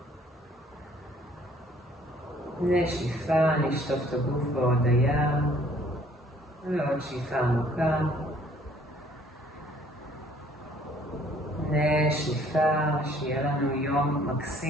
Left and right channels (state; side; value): normal; both; correlation 0.59